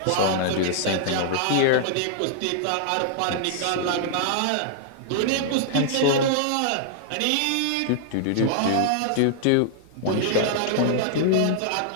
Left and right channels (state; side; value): different; both; correlation -0.01